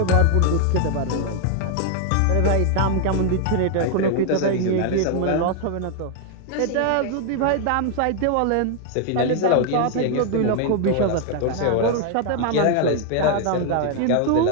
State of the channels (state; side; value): different; both; correlation 0.00